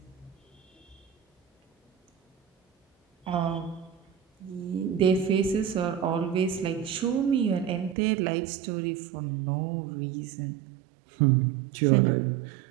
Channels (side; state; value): left; drops out; at 8.0 s